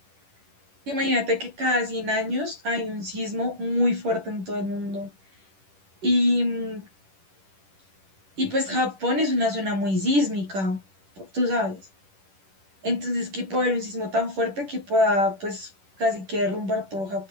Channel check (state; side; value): late; left; 10 ms